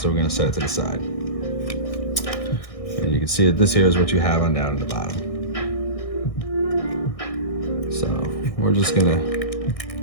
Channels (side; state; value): right; late; 1.6 ms